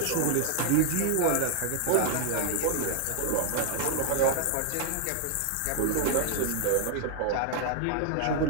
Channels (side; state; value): both; different; correlation 0.00